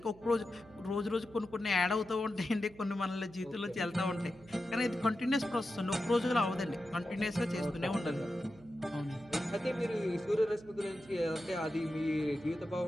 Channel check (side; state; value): right; noise; hum, 23 dB below the sound